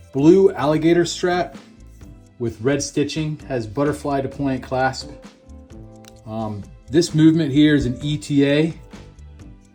blue alligator strap with red stitching, has butterfly deployant clasp. This movement here is an ETA,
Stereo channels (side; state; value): both; identical; correlation 1.00